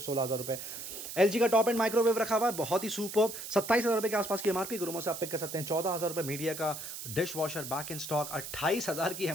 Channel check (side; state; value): right; noise; hiss, 9 dB below the sound